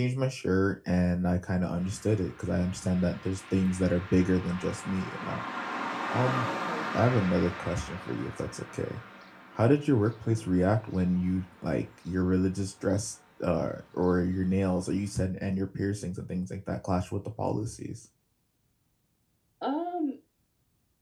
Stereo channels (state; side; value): identical; both; correlation 1.00